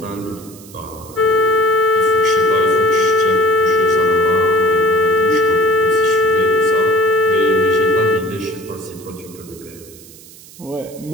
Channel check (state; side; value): noise; right; hiss, 21 dB below the sound